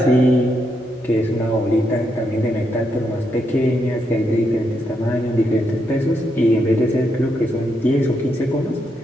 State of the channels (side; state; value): both; normal; correlation 0.80